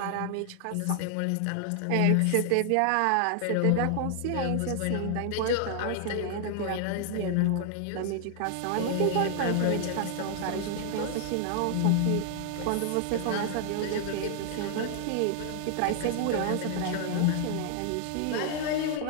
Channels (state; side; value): different; both; correlation 0.00